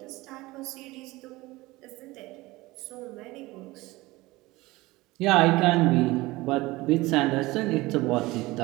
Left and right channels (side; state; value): left; quieter; 20.3 dB